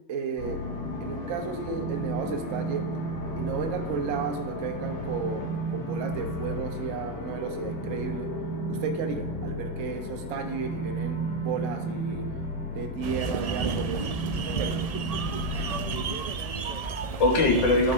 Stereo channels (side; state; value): right; late; 1.7 ms